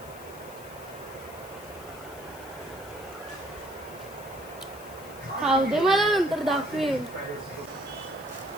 खाऊ दे मला, नंतर दाखवेन.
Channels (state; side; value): noise; left; hiss, 19 dB below the sound